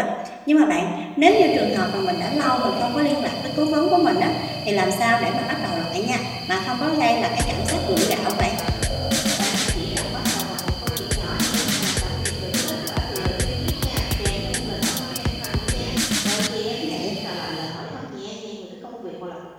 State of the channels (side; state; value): both; identical; correlation 1.00